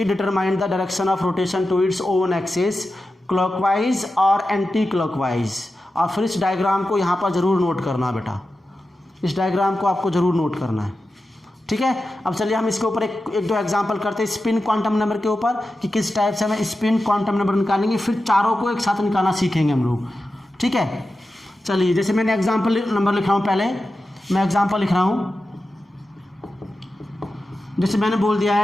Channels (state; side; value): normal; both; correlation 0.92